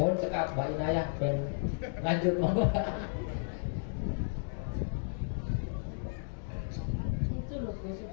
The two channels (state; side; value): silent; right; digital silence